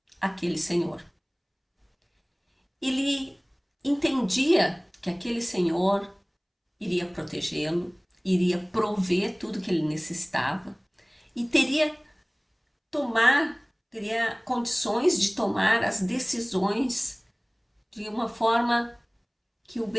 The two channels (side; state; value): both; identical; correlation 1.00